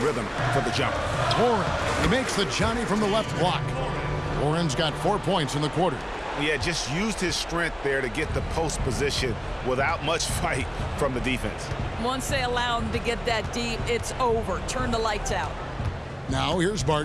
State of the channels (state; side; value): identical; both; correlation 1.00